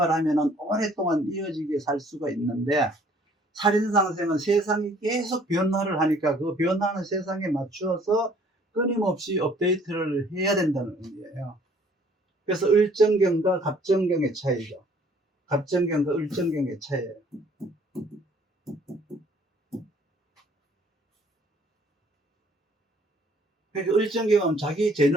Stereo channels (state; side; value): normal; both; correlation 0.58